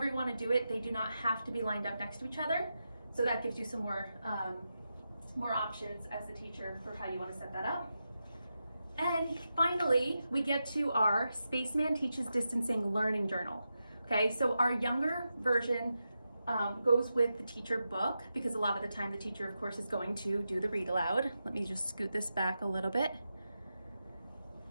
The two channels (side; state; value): both; inverted; correlation -0.89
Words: you want to do it, they do not have to be lined up next to each other. So that gives you some more options as the teacher for how you want to set that up. And finally, we get to our Spaceman Teaches Distancing Learning Journal. Okay, so our younger version goes with the teacher book, because a lot of the time the teacher, of course, is going to do the read aloud. Let me just scoot this back a little bit.